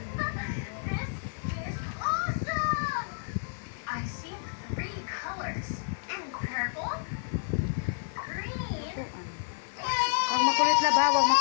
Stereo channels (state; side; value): silent; right; digital silence